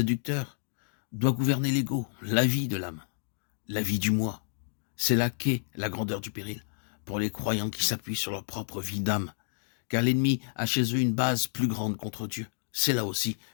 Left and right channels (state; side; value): silent; right; digital silence